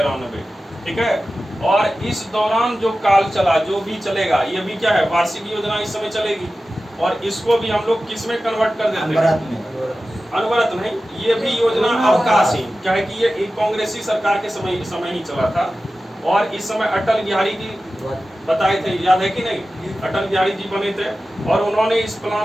ठीक है, और इस दौरान जो काल चला, जो भी चलेगा, ये भी क्या है? वार्षिक योजना इस समय चलेगी। और इसको भी हम लोग किस में कन्वर्ट कर देते हैं? अनवरत नहीं, ये भी योजना अवकाश ही, क्या है कि ये एक कांग्रेसी सरकार के समय ही चला था। और इस समय अटल बिहारी जी बताए थे, याद है कि नहीं? अटल बिहारी जी बने थे और उन्होंने इस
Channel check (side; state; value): both; normal; correlation 0.94